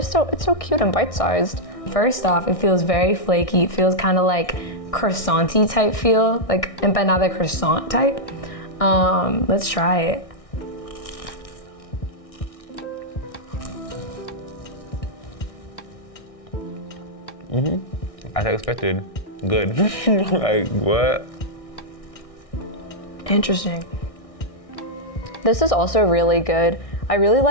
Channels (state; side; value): late; right; 1.6 ms